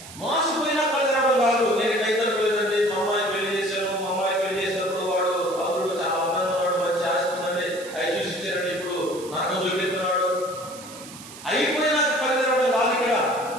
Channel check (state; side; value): noise; right; hiss, 16 dB below the sound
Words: మోసపోయినా కలగడం కాదు. నేను కైతలు లేదండి, మా అమ్మాయి పెళ్లి చేశాను, మా అమ్మాయి పెళ్లి చేసినప్పుడు వాడు అల్లుడు చాలా అందంగా ఉన్నాడు, మంచి ఆస్తుందండి, అవి చూసి ఇచ్చారండి, ఇప్పుడు నాకు చూపెడుతున్నాడు. అయిపోయినాక కలగడం కాదు. ఇక్కడ